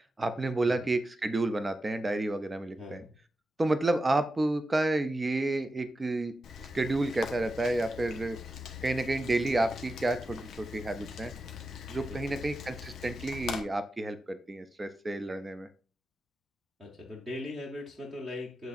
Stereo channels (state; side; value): normal; both; correlation 0.91